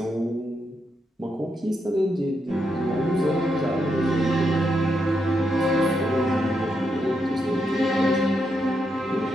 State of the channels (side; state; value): both; normal; correlation 0.82